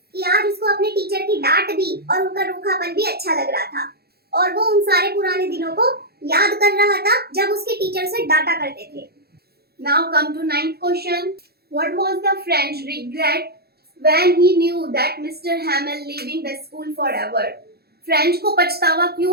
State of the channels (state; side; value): late; left; 0.46 ms